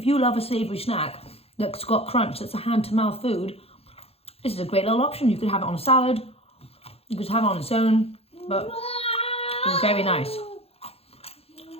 you love a savoury snack that's got crunch, that's a hand-to-mouth food, this is a great little option. You could have it on a salad, you could have it on its own, but it's very nice.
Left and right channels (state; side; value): late; right; 0.29 ms